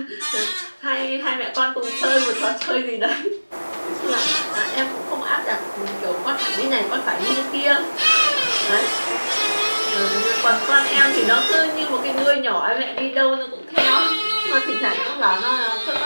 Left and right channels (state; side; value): inverted; both; correlation -1.00